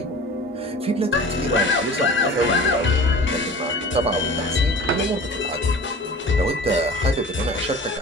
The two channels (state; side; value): normal; both; correlation 0.40